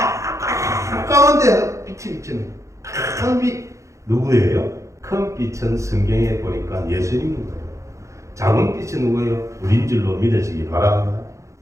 가운데 빛이 비치는 큰 빛. 누구예요? 큰 빛은 성경에 보니까 예수님인 거예요. 작은 빛은 누구예요? 우린 줄로 믿으시기 바랍니다.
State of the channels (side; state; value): left; late; 0.15 ms